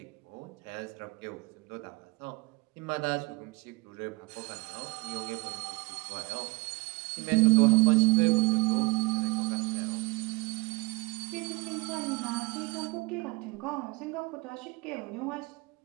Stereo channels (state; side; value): quieter; left; 24.3 dB